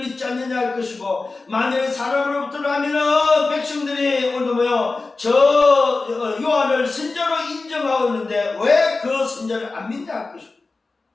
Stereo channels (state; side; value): quieter; right; 3.7 dB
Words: 않느냐 할 것이고 만일 사람으로부터라면 백성들이 오늘 뭐요 저 요한을 선지자로 인정하고 있는데 왜 그 선지자를 안 믿냐 할 것이고